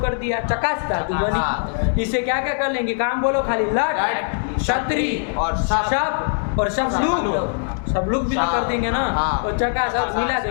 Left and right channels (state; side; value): silent; right; digital silence